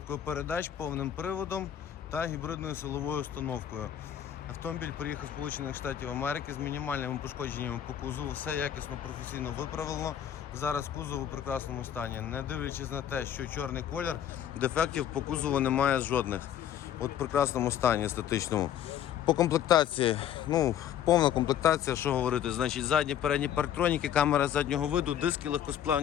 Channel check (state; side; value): quieter; right; 10.2 dB